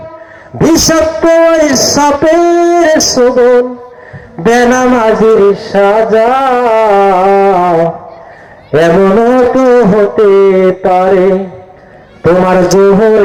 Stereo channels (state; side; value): identical; both; correlation 1.00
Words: বিষাক্ত সাপের শোভন, বেনামাজির সাজা এমনও তো হতে পারে তোমার